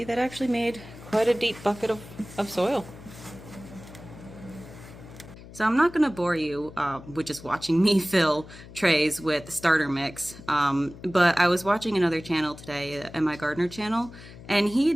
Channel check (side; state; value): left; noise; hum, 17 dB below the sound